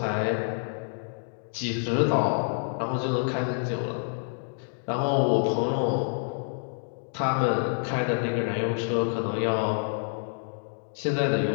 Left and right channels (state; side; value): silent; right; digital silence